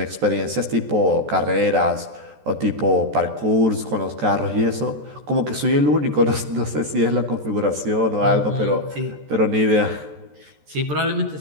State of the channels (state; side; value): late; left; 14 ms